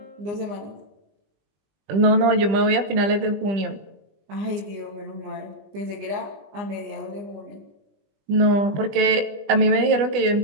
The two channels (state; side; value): late; left; 20 ms